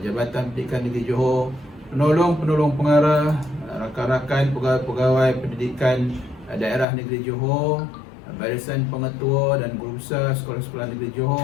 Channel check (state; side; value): drops out; right; at 6.9 s